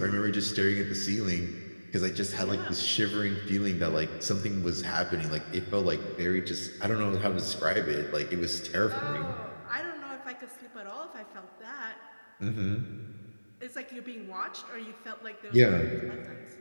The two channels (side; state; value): both; inverted; correlation -1.00